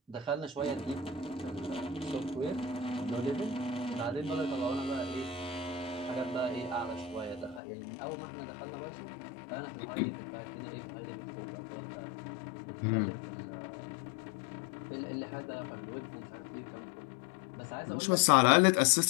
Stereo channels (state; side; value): drops out; right; at 7.6 s